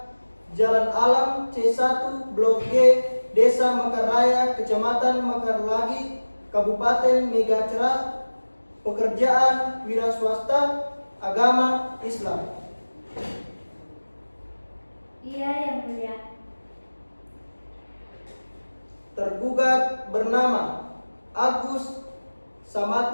Jalan Alam C1 Blok G, Desa Mekar Raya, Kecamatan Mekar Lagi, Kabupaten Megacerah. Pekerjaan wira swasta, agama Islam. Iya Yang Mulia. Tergugat bernama Agus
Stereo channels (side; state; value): both; inverted; correlation -1.00